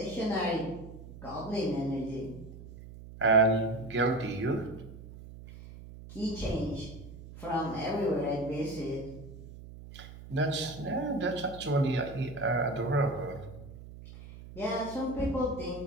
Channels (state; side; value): noise; right; hum, 15 dB below the sound